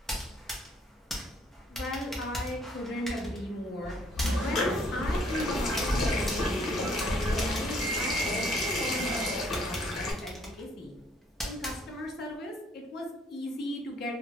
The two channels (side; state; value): both; normal; correlation 0.64